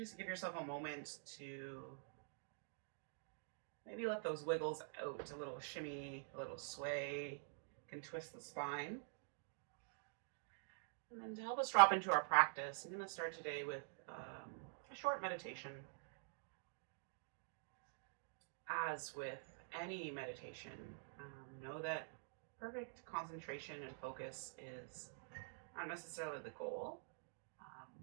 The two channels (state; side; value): silent; left; digital silence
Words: give yourself a moment to maybe let those wiggles out, a little shimmy, a little sway. You can twist the spine. And then to help us drop into our practice, I'm going to start today with a short meditation. As with any meditation, know that perfect concentration and focus is not necessarily the goal,